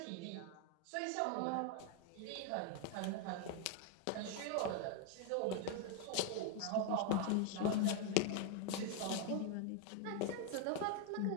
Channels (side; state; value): both; different; correlation 0.01